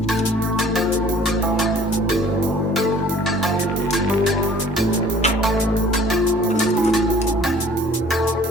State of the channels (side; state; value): both; normal; correlation 0.52